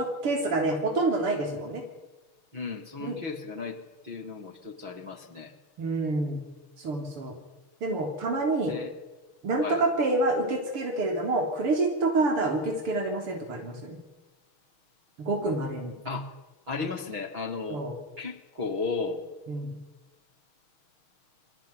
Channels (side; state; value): left; late; 6.1 ms